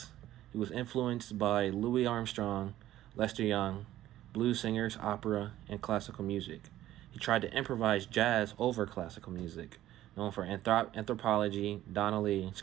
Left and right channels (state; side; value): quieter; left; 13.8 dB